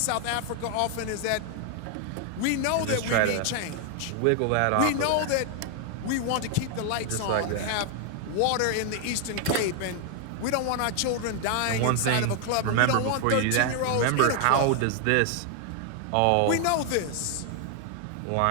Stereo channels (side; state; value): both; different; correlation 0.00